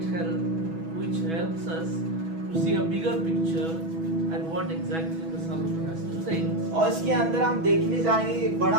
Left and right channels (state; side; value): late; left; 6.1 ms